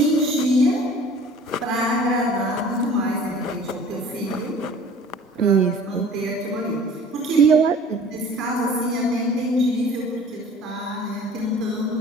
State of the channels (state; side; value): normal; both; correlation 0.47